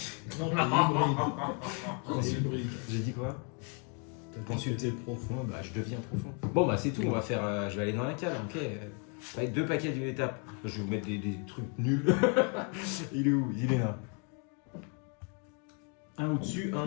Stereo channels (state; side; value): quieter; right; 38.2 dB